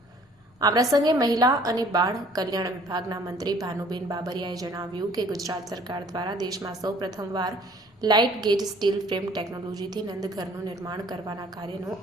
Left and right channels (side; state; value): both; normal; correlation 0.55